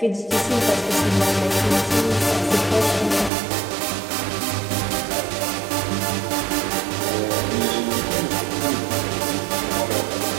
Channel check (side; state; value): left; drops out; at 3.3 s